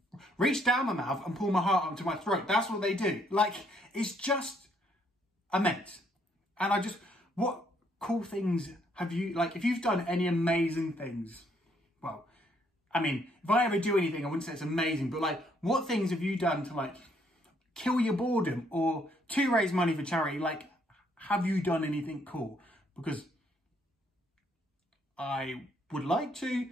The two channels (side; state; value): both; normal; correlation 0.69